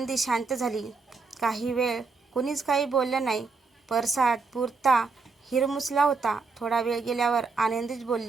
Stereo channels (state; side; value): quieter; left; 4.4 dB